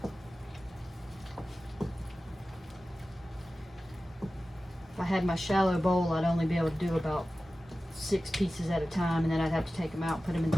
If I had my shallow bowl, I'd only be able to do about 6 pieces at a time, and then I'd have to take them out and put them in the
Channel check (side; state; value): both; normal; correlation 0.95